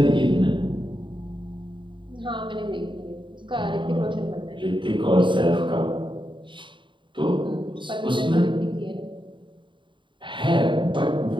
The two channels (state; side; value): late; left; 0.23 ms